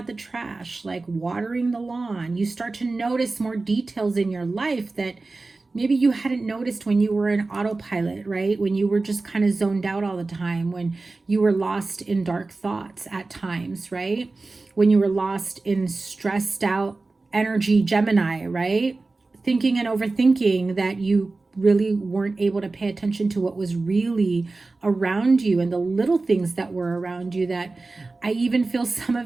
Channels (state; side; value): quieter; left; 3.5 dB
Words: the trash, like watering the lawn. You start to notice more details in your life that maybe you hadn't noticed when you were in autopilot, right? When you were just kind of zoned out all the time, when you were lost in dark thoughts at times, right? When you were lost in stressed out energy, Gemini, right? Thinking and overthinking that you really weren't able to pay attention to what was really around you and the little things that were around you, that I even feel some